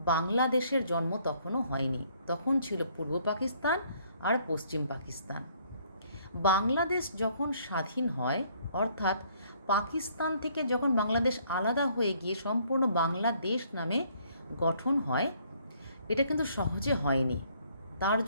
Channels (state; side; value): inverted; both; correlation -0.64